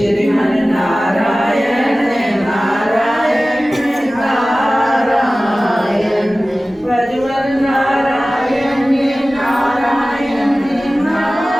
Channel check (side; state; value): both; normal; correlation 0.97